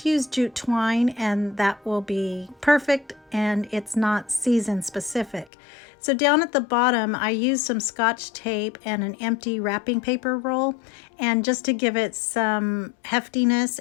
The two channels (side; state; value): right; drops out; at 5.5 s